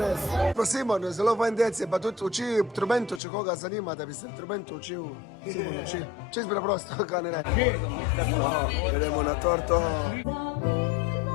Simon, zelo fajn dec, je pa tudi uči trubentu, če koga zanima, da bi se trubentu učil. Simon uči. Čist preprosto, kaj ne ne. Gremo na torto.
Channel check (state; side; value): drops out; right; at 3.2 s